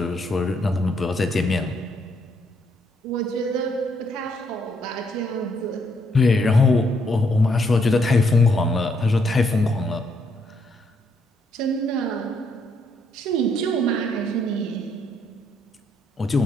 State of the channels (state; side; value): normal; both; correlation 0.73